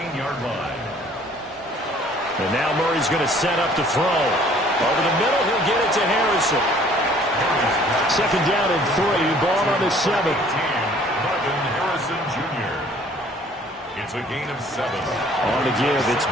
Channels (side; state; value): both; normal; correlation 0.56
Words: line. And now Murray's going to set up to throw. Over the middle, he'll get it to Harrison. 2nd down and 3, ball on the 7. Marvin Harrison Jr. It's a gain of 7. On the give, it's